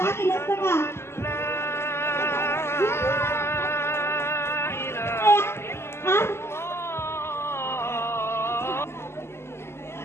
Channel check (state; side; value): late; right; 0.12 ms